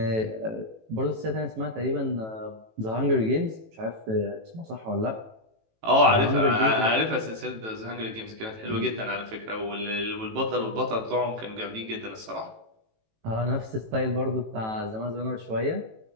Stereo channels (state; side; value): late; left; 18 ms